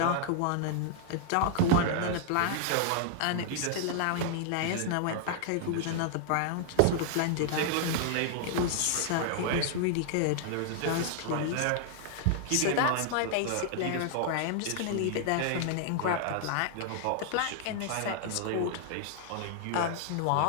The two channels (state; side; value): different; both; correlation -0.01